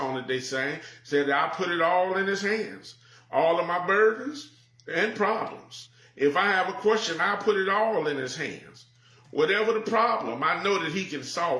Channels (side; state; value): both; identical; correlation 1.00